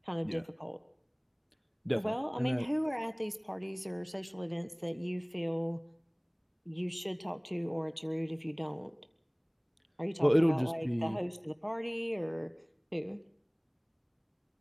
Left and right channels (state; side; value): identical; both; correlation 1.00